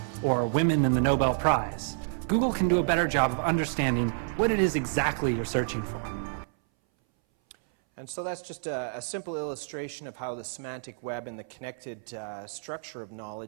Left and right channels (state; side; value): silent; left; 59 dB below the other